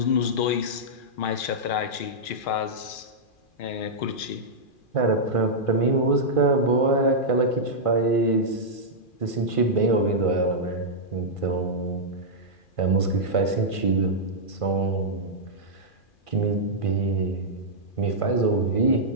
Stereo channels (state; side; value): late; right; 2.4 ms